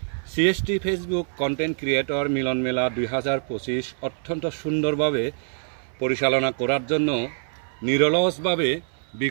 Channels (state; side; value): silent; left; 62 dB below the other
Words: সিএসটি ফেসবুক কন্টেন্ট ক্রিয়েটর মিলন মেলা 2025 অত্যন্ত সুন্দরভাবে পরিচালনা করার জন্য নিরলসভাবে